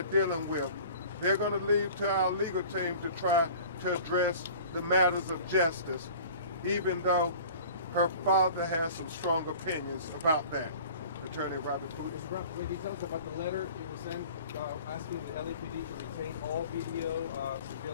dealing with. They're going to leave to our legal team to try to address the matters of justice, even though her father has some strong opinions about that. Attorney Robert Pooty. When you tell us about the letter it was sent asking the LAPD to retain all video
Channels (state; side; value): inverted; both; correlation -0.43